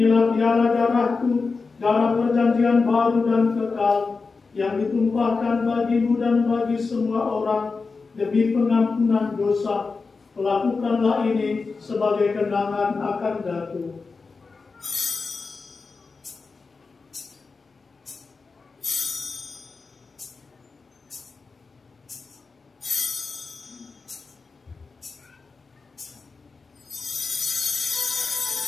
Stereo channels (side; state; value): right; quieter; 4.4 dB